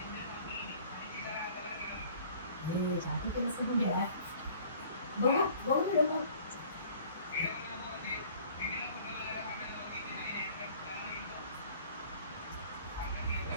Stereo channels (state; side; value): inverted; both; correlation -0.52